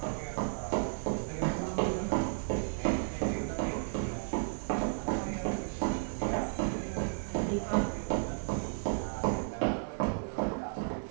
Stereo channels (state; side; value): silent; left; digital silence